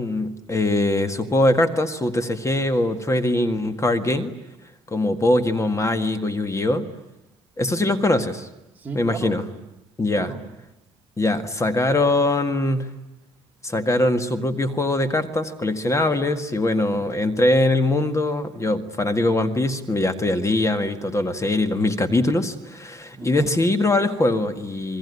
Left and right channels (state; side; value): normal; both; correlation 0.72